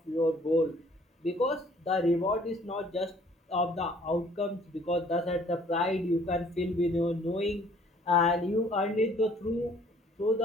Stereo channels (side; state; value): both; normal; correlation 0.58